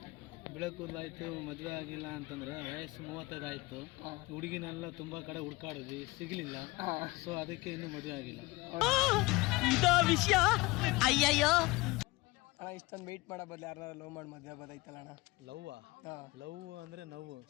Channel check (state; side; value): quieter; right; 22.3 dB